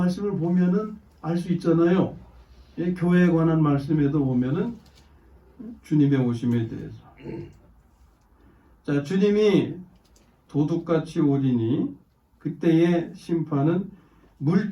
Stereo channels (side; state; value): both; identical; correlation 1.00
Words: 보면은 알 수 있잖아요. 교회에 관한 말씀에도 보면은 주님의 오심에 대해서. 자, 주님이 도둑같이 오리니 그때의 심판은